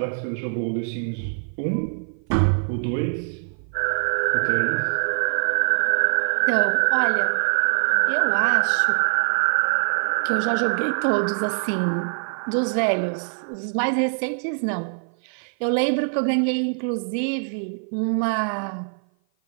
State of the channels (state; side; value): silent; left; 56 dB below the other